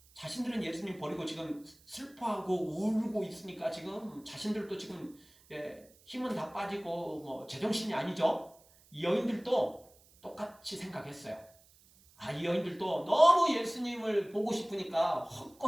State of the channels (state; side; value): noise; right; hiss, 28 dB below the sound